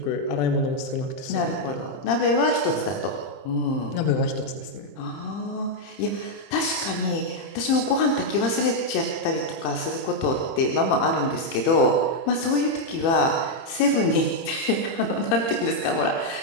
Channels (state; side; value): late; right; 30 ms